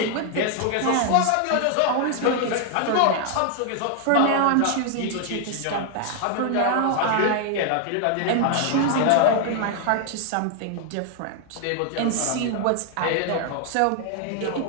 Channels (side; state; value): both; different; correlation 0.00